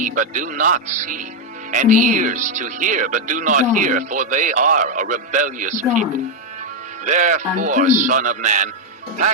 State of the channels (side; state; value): both; normal; correlation 0.02